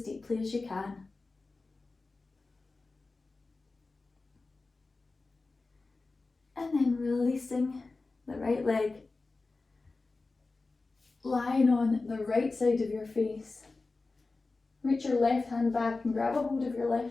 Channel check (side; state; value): right; quieter; 3.6 dB